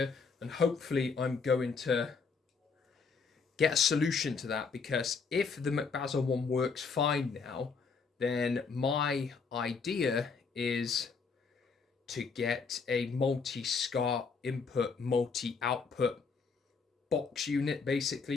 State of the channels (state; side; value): quieter; right; 5.1 dB